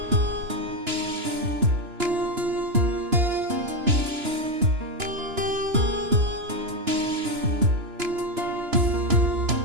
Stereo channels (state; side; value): late; left; 2.9 ms